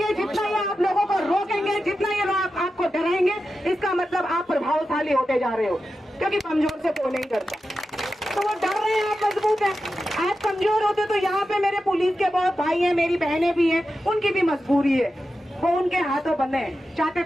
जितना ये आप लोगों को रोकेंगे, जितना ये लोग आपको डराएंगे, इसका मतलब आप प्रभावशाली होते जा रहे हो, क्योंकि कमजोर से कोई नहीं डरता। तो वो डर रहे हैं, आप मजबूत हैं। आप कमजोर होते तो यहाँ पे मेरे पुलिस के बहुत भाई हैं, मेरी बहनें भी हैं, उनकी भी मजबूरी है, वो उनके हाथों बंधे हैं। चाहते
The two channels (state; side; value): normal; both; correlation 0.91